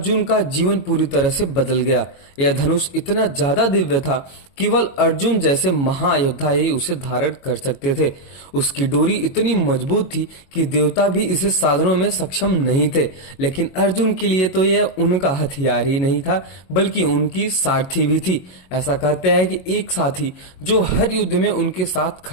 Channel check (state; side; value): late; right; 22 ms